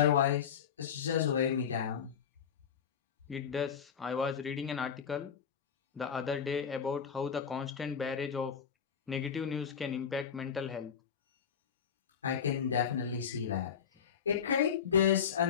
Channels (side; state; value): right; quieter; 7.5 dB